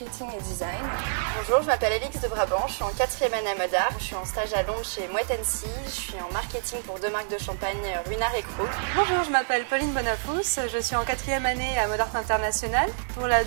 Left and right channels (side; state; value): left; silent; digital silence